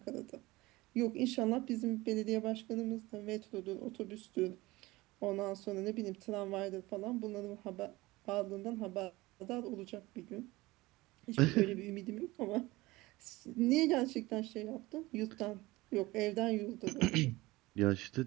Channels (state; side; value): quieter; left; 20.3 dB